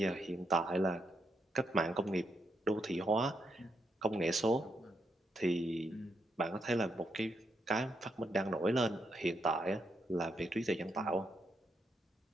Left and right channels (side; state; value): both; normal; correlation 0.80